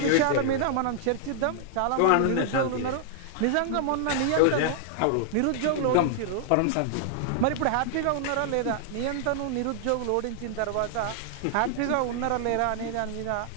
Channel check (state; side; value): different; both; correlation -0.01